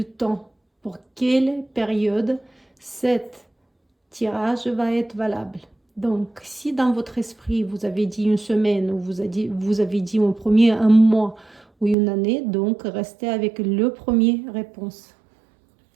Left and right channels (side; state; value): left; drops out; at 12.0 s